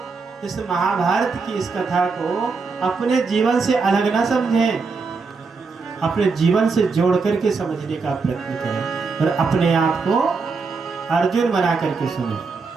इस महाभारत की इस कथा को अपने जीवन से अलग ना समझें, अपने जीवन से जोड़ करके समझने का प्रयत्न करें और अपने आप को अर्जुन बना करके सुने।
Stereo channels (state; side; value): quieter; left; 4.6 dB